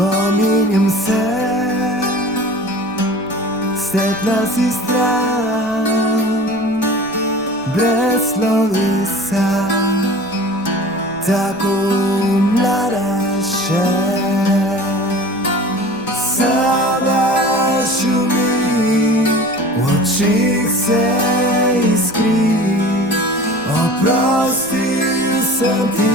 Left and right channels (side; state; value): left; noise; rumble, 27 dB below the sound